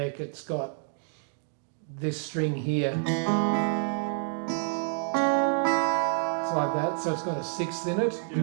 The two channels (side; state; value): left; silent; digital silence